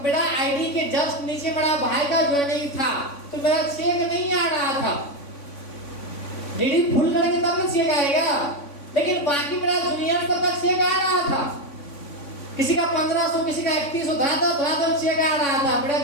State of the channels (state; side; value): late; right; 3.5 ms